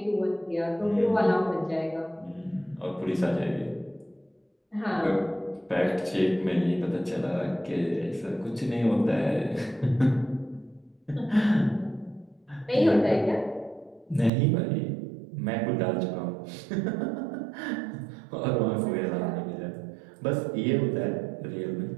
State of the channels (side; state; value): left; drops out; at 14.3 s